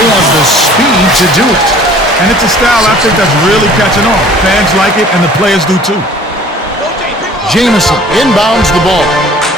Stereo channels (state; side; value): normal; both; correlation 0.50